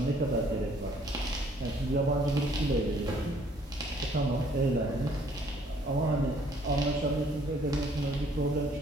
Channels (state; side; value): normal; both; correlation 0.62